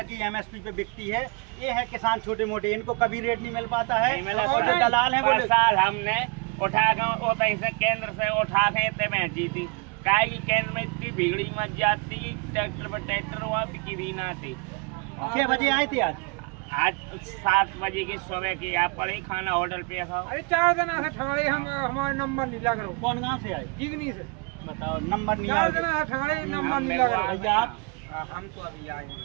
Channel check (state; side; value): quieter; left; 31.0 dB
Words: कि एमएसपी पे बिकती है। ये है किसान छोटे मोटे, इनको कभी रेट नहीं मिल पाता है। और जो दलाल है वो साल हमने उठा कर से केंद्र से उठा के इतने बेची थी। काय की केंद्र में इतनी भीड़ी मच जाती, ट्रैक्टर पर ट्रैक्टर हुआ बिकी भी ना थी। 6 बजे आए थे आज 7 बजे की सुबह की आप पड़े खाना होटल पे खाओ। अरे 4 दिन ठगाड़े हम हमारा नंबर नहीं लग रहा। कौन गाँव से आए? जिगनी से। बताओ नंबर नहीं 4 दिन ठगाड़े नंबर नहीं लग रहा। भैया आप? हम तो अभी आए